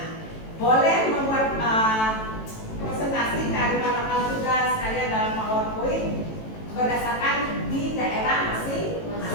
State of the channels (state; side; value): late; right; 18 ms